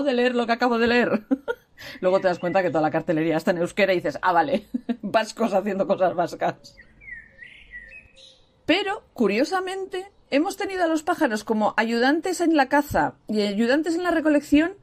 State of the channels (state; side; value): identical; both; correlation 1.00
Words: de leer lo que acabo de leer. Luego te das cuenta que toda la cartelería está en euskera y dices, ah, vale, vascos haciendo cosas vascas. Pero, curiosamente, hemos tenido a los pájaros como ayudantes en la caza y ayudantes en la recolección